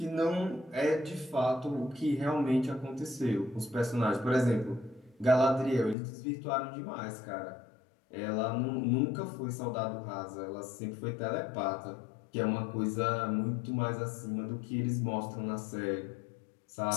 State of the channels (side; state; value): right; drops out; at 6.0 s